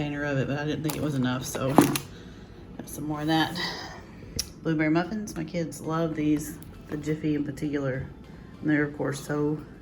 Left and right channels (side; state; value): both; identical; correlation 1.00